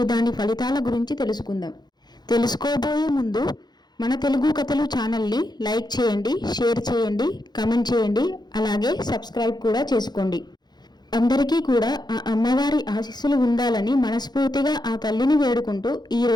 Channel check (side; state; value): right; late; 0.20 ms